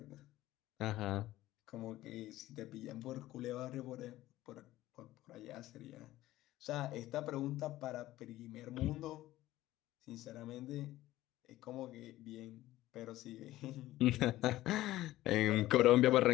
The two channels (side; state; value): right; quieter; 15.7 dB